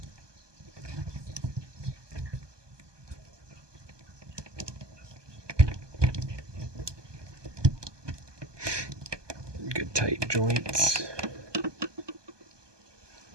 Good tight joints.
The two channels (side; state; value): left; late; 1.2 ms